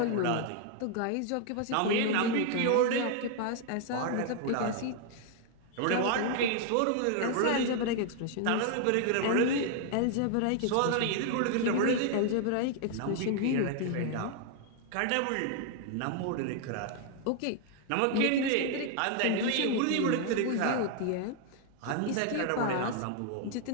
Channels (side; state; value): both; different; correlation 0.00